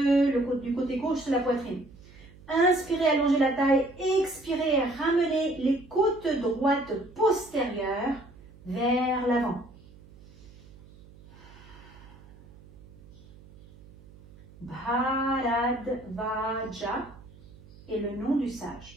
côté gauche de la poitrine. Inspirez, allongez la taille. Expirez, ramenez les côtes droites postérieures vers l'avant. Bharadvaja est le nom du sage.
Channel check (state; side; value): noise; right; hum, 22 dB below the sound